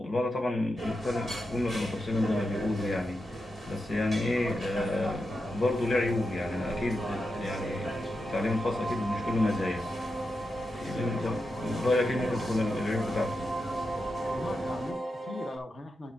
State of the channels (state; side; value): normal; both; correlation 0.88